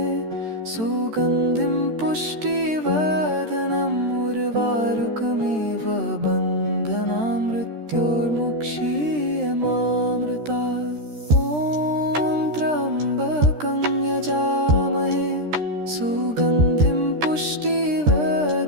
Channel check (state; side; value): late; left; 13 ms